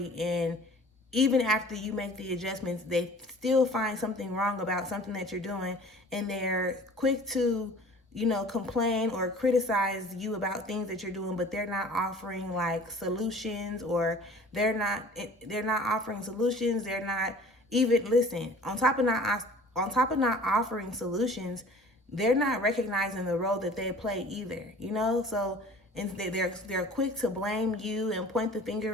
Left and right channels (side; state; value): both; normal; correlation 0.47